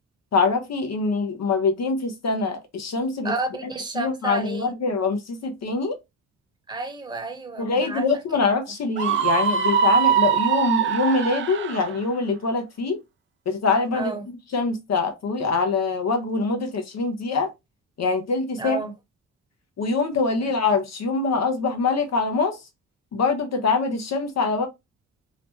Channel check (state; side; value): normal; both; correlation -0.09